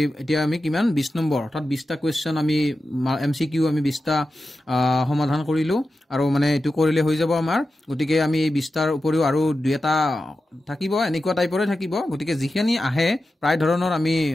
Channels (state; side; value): normal; both; correlation 0.92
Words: এতিয়া আমি কিমান 20 নম্বৰ অৰ্থাৎ 20টা কোৱেশ্চন আমি এমসিকিউ আমি 20টা সমাধান কৰিলো আৰু মানে এটো কৰিলে হৈ যাব আমাৰ গতিকে আমি এই 20টাৰ উপৰিও আৰু দুটা থাকিব এনেকুৱা টাইপৰে থাকিব গতিকে যিখিনি আহে প্ৰায় ধৰণৰ আমি